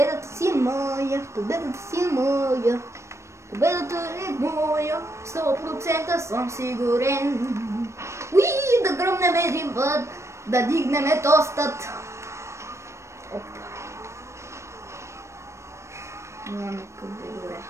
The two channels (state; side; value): late; left; 0.13 ms